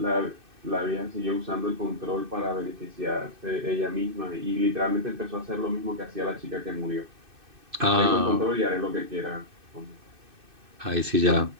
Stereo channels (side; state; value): left; late; 2.6 ms